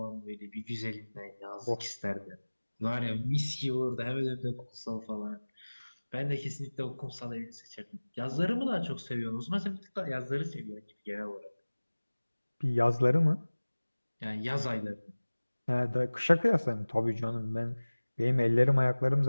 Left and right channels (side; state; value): both; inverted; correlation -1.00